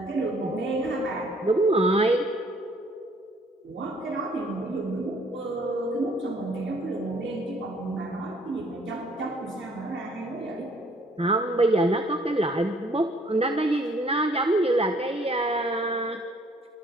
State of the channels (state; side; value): normal; both; correlation 0.61